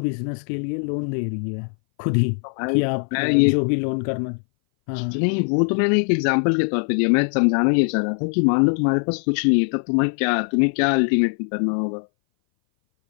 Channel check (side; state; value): right; silent; 60 dB below the other